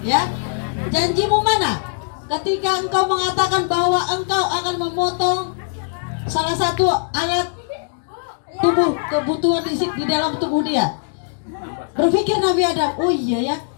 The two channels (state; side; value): silent; right; digital silence